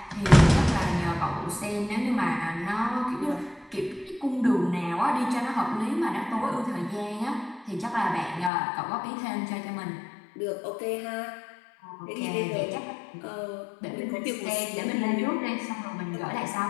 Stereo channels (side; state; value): right; drops out; at 8.5 s